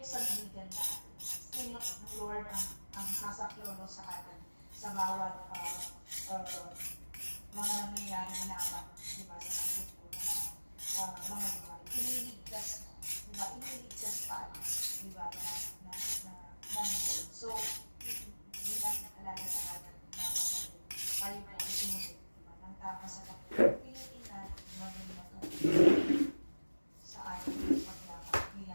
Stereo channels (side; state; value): both; inverted; correlation -1.00